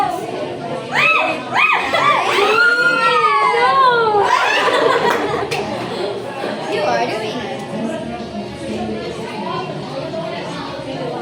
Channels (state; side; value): identical; both; correlation 1.00